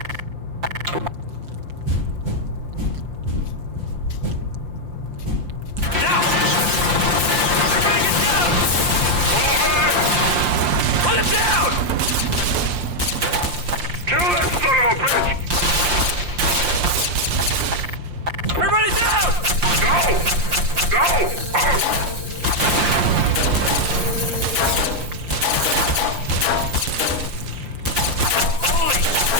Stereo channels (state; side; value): late; left; 5.7 ms